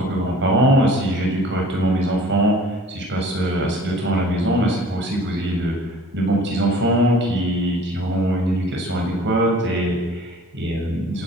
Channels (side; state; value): both; normal; correlation 0.48